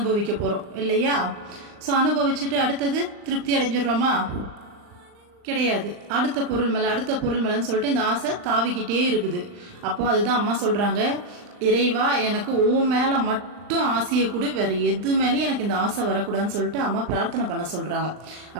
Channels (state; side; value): late; left; 39 ms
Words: போகிறோம் இல்லையா? ஸோ அனுபவிச்சுட்டு அடுத்தது திருப்தி அடைஞ்சிடுறோமா? கிடையாது. அடுத்த பொருள் மேலே அடுத்த பொருள் மேலேன்னு சொல்லிட்டு இந்த ஆசை தாவிக்கிட்டே இருக்குது. அப்போ அதுதான் அம்மா சொல்கிறாங்க, இறைவா எனக்கு உன் மேலே மட்டும் ஆசையை கூட, வேற எது மேலேயும் எனக்கு இந்த ஆசை வரக்கூடாதுன்னு சொல்லிட்டு அம்மா பிரார்த்தனை பண்ண சொல்கிறாங்க.